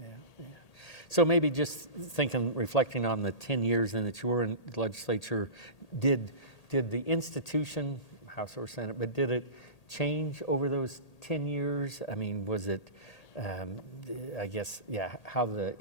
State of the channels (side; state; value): right; late; 1.8 ms